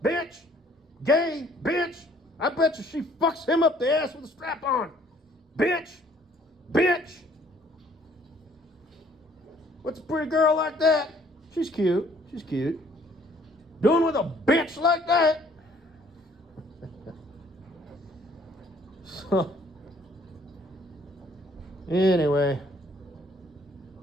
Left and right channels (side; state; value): both; normal; correlation 0.60